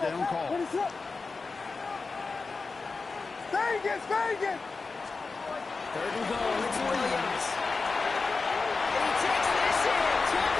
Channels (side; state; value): right; quieter; 4.2 dB